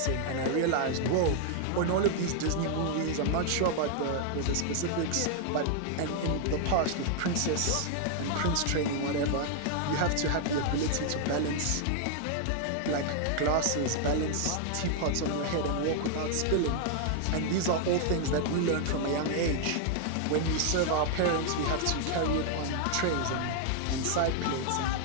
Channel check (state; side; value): different; both; correlation 0.00